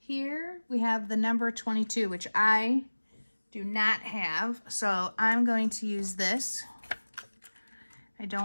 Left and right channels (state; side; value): inverted; both; correlation -1.00